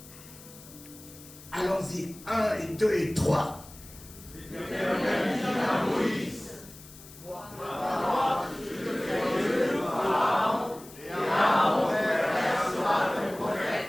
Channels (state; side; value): noise; left; hiss, 19 dB below the sound